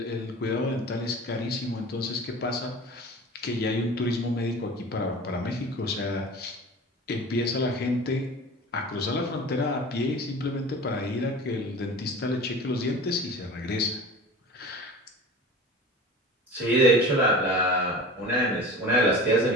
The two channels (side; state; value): both; normal; correlation 0.36